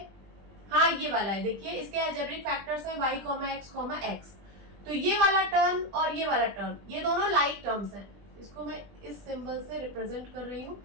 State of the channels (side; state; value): left; late; 20 ms